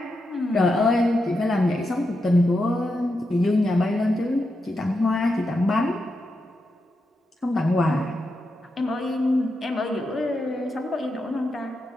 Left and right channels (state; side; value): normal; both; correlation 0.86